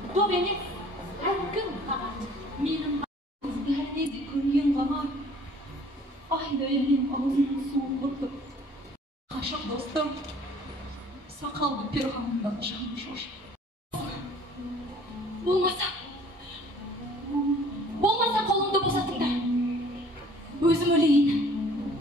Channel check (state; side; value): normal; both; correlation 0.54